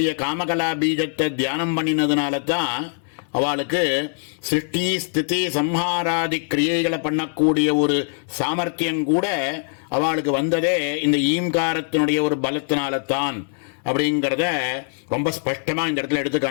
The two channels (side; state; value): right; silent; digital silence